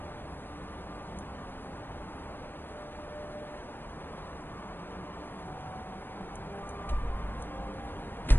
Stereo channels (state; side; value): late; right; 0.096 ms